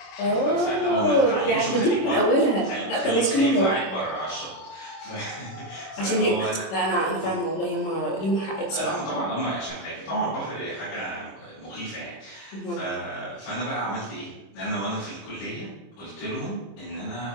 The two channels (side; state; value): right; late; 26 ms